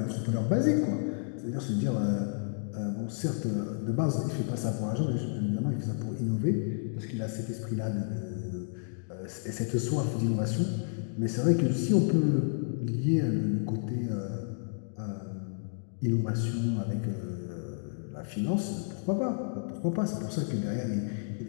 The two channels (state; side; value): silent; right; digital silence